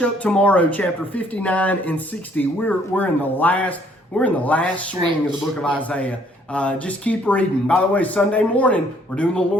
up tomorrow, chapter 59 and 60, we're in the last swing of the book of Isaiah. Just keep reading. By the way, Sunday morning, we're doing the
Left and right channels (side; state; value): both; normal; correlation 0.63